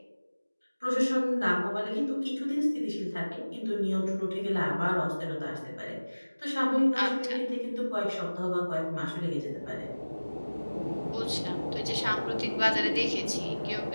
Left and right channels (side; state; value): both; inverted; correlation -1.00